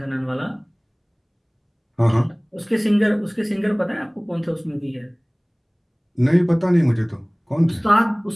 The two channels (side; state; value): both; identical; correlation 1.00